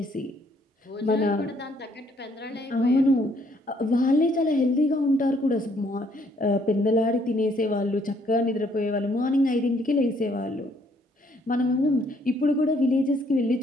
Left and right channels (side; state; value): both; normal; correlation 0.66